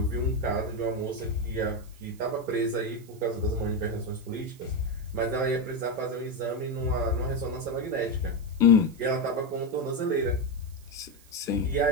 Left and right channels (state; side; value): noise; right; hiss, 26 dB below the sound